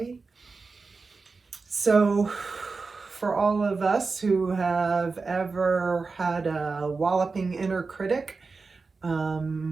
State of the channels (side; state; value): left; quieter; 4.3 dB